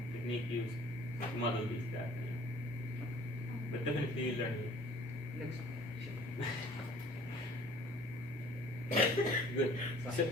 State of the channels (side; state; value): both; normal; correlation 0.52